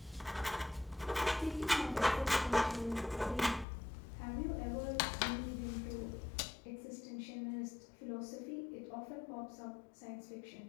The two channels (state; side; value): drops out; right; at 3.7 s